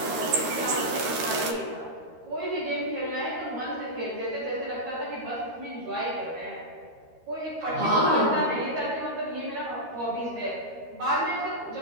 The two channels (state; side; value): late; left; 13 ms